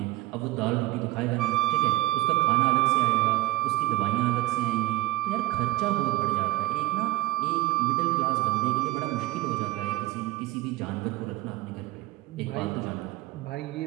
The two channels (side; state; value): left; quieter; 18.0 dB